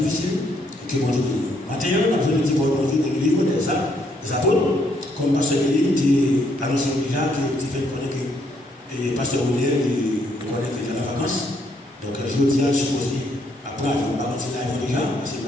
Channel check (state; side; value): normal; both; correlation 0.71